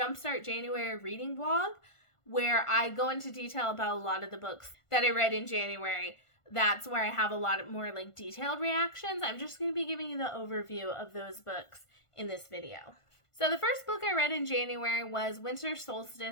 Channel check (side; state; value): right; late; 1.5 ms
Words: January reading vlog where I go into detail about a lot of the books that I read in January. That's where I have a lot more detailed reactions. I'm just going to be giving you the overview of those books in this video. So the first book I read in January was Winter